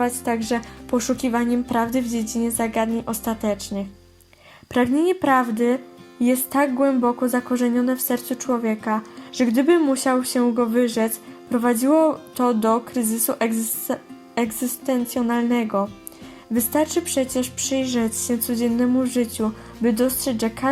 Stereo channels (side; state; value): both; identical; correlation 1.00